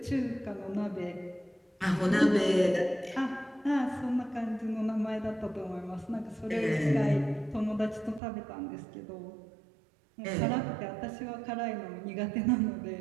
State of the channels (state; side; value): drops out; left; at 8.2 s